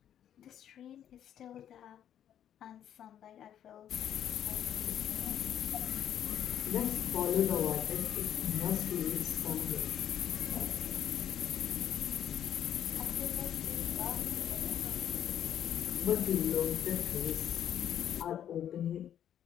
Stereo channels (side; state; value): right; quieter; 10.2 dB